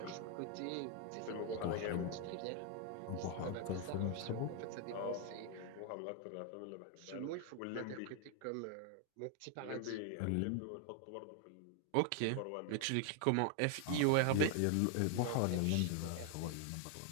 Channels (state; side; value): different; both; correlation 0.00